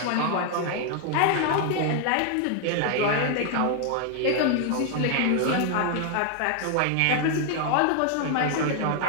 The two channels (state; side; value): different; both; correlation 0.00